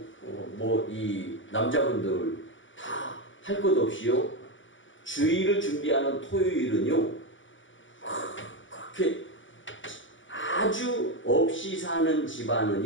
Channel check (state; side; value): late; right; 0.56 ms